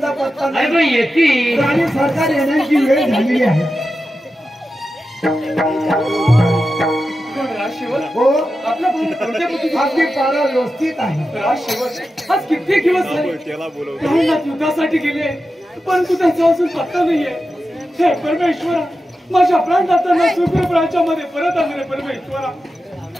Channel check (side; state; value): both; normal; correlation 0.91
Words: पत्ता नाही. अरे येते आणि सरकार येण्याची वेळ झालेली आहे. हो आपली पारा व्यवस्थित आहे. आज कित्येक दिवस झाले त्याला बोलव. राहण्यात युद्धासाठी गेले परंतु त्यांचा अजून पत्ता नाहीये. हे परमेश्वरा माझ्या प्राणदात्यांना सुखरूप राज्यामध्ये परत आणले. परमेश्वरा